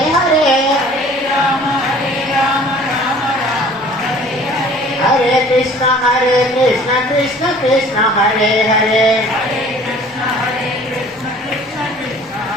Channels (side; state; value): both; normal; correlation 0.50